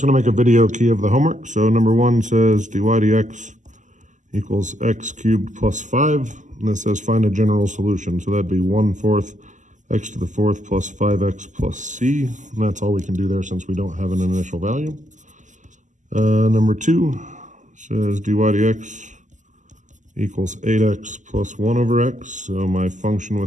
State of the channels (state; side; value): late; left; 0.36 ms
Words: going to make a video key of the homework. So number 1 says dy dx equals x cubed plus 5. And this says find a general solution. So that'd be 1/4 x to the 4th plus 5x plus c. And that's all we can do there since we don't have an initial value. Number 2 says dy dx equals 8x plus 1 over x. So my function